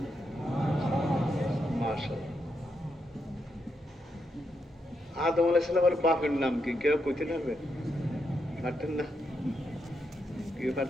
মাশাআল্লাহ, আদম আলাইহিস সালামের বাপের নাম কি? কেউ কইতে পারবে? পারতেন না? কেউ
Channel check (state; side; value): normal; both; correlation 0.82